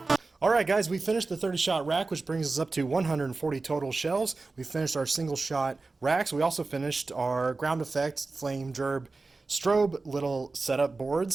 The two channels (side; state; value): left; quieter; 3.7 dB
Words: Alright guys, we finished the 30-shot rack, which brings us up to 140 total shells. We finished our single-shot racks. We also finished our ground effect, flame, gerb, strobe little setup